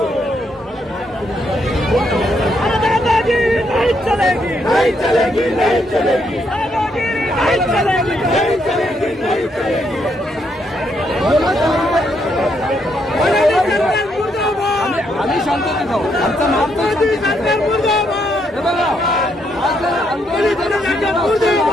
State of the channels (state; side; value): normal; both; correlation 0.76